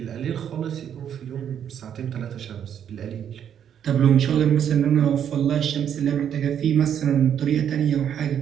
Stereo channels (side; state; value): left; quieter; 9.0 dB